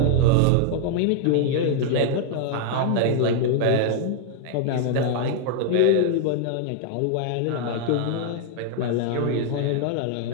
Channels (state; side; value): different; both; correlation 0.00